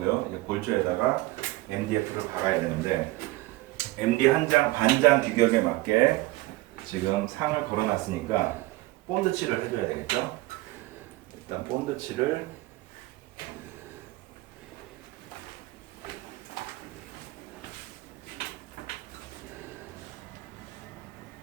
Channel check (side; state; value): left; quieter; 19.4 dB